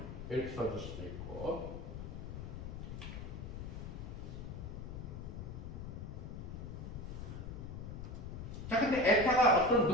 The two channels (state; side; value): noise; left; rumble, 7 dB below the sound